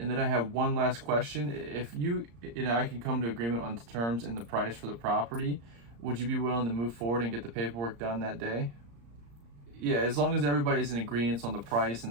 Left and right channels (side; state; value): left; late; 35 ms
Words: then I have one last question. If you and I can come to agreement on the terms and the price for the property, would you be willing to move forward and get the paperwork done that day? Yeah, as long as everybody's in agreement on the price